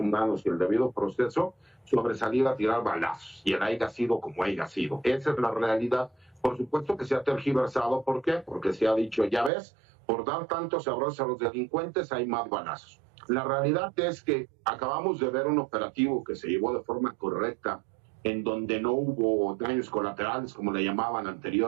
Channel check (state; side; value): drops out; left; at 9.5 s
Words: y el debido proceso sobre salir a tirar balazos, y el haya sido como haya sido. Esa es la realidad. Por supuesto que se ha tergiversado. ¿Por qué? Porque se ha dicho, ya ves, por dar tantos abrazos a los delincuentes hay más balazos. La realidad es que acabamos de ver un operativo que se llevó de forma correcta, en donde no hubo daños colaterales, como le llamaban